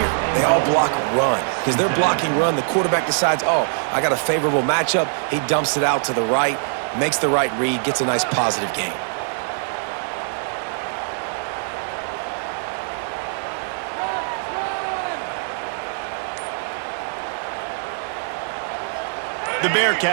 They all block run. Because they're blocking run, the quarterback decides, oh, I got a favorable matchup. He dumps it out to the right, makes the right read, gets a nice positive gain. The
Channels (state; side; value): silent; left; digital silence